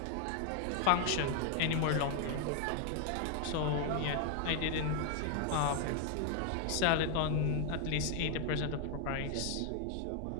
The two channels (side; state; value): both; different; correlation 0.00